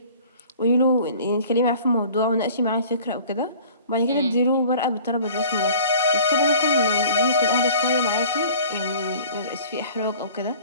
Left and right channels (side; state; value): both; inverted; correlation -0.46